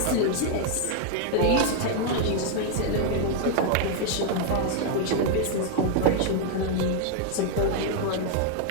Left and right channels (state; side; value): different; both; correlation 0.00